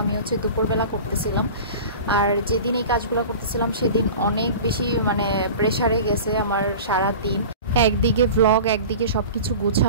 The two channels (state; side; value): inverted; both; correlation -0.36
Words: আমি হচ্ছে দুপুরবেলা করতেছিলাম। আর যেদিন এই কাজগুলো করতেছিলাম সেদিন অনেক বেশি প্রেশারে গেছে আমার সারা দিন। একদিকে ভ্লগ, একদিকে সব কিছু